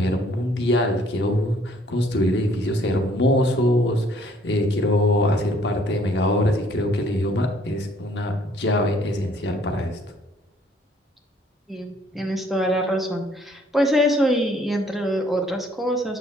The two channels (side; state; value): both; normal; correlation 0.61